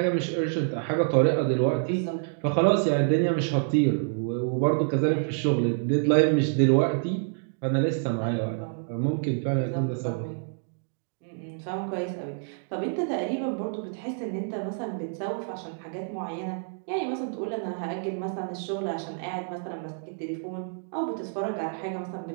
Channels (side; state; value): left; silent; digital silence